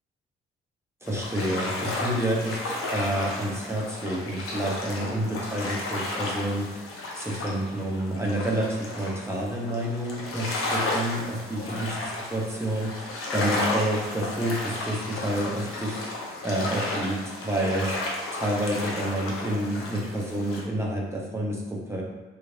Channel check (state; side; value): normal; both; correlation 0.49